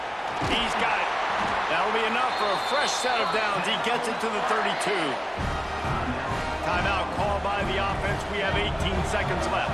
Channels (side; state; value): both; identical; correlation 1.00